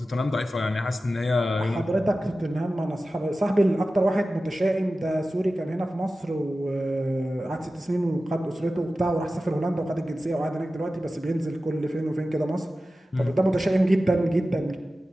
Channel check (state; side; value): normal; both; correlation 0.95